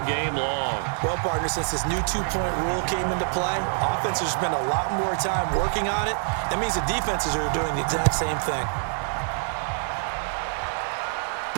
game long. Well, partner, since this new 2-point rule came into play, offenses spend a lot more time working on it. That means the defenses are doing the exact same thing.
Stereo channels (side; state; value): left; silent; 61 dB below the other